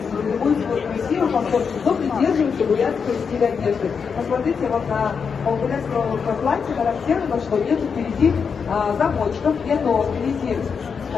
любой свой красивый комфорт, но придерживается бурятского стиля одежды. Посмотрите, вот на бурятского платья характерно, что нет впереди замочков, нет впереди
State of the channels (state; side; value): quieter; right; 6.1 dB